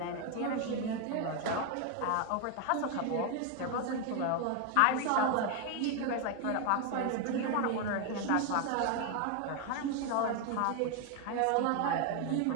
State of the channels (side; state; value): both; different; correlation 0.01